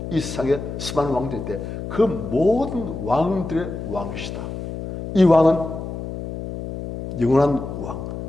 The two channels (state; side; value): noise; left; hum, 7 dB below the sound